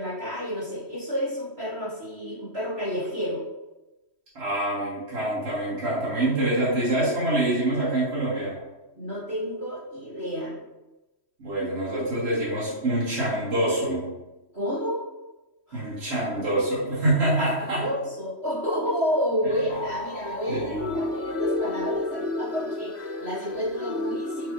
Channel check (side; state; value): left; late; 3.1 ms